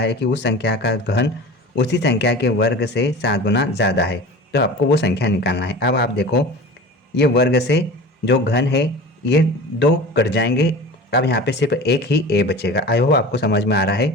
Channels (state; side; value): normal; both; correlation 0.35